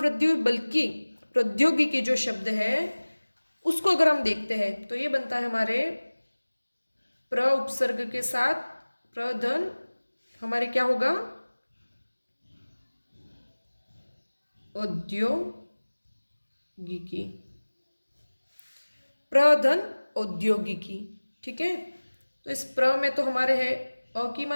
वृद्धि हुई। बल्कि प्रौद्योगिकी जो शब्द है उसको अगर हम देखते हैं तो ये बनता है हमारे प्र उपसर्ग के साथ प्रधन, हमारे क्या होगा औद्योगिकी, प्रधन औद्योगिकी। ठीक है, तो इस प्र में तो हमारे है अ की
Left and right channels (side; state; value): both; inverted; correlation -1.00